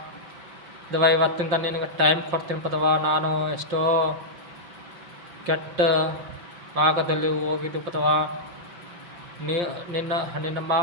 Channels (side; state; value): left; late; 5.7 ms